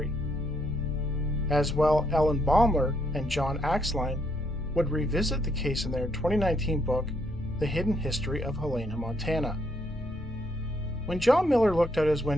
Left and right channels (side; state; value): both; normal; correlation 0.73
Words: As well, Ellen Baumler and John Axline would revisit the case in their 2019 book, The Hidden History of Helena, Montana. When John Miller looked out his